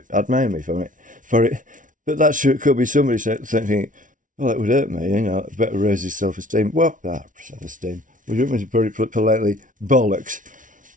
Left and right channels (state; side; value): late; left; 0.38 ms